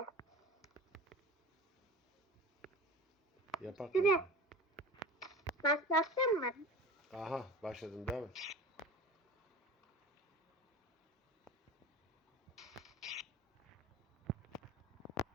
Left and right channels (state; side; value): normal; both; correlation 0.34